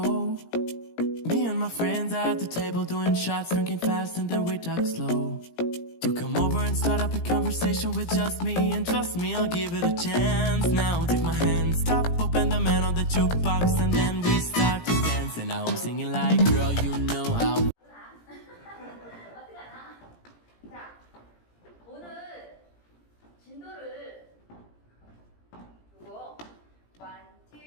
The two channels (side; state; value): right; late; 17 ms